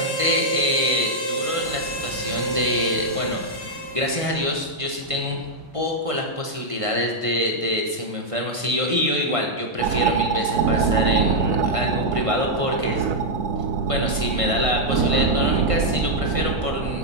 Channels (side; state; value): left; late; 1.5 ms